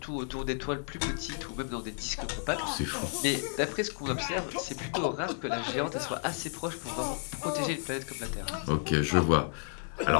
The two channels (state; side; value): silent; right; 56 dB below the other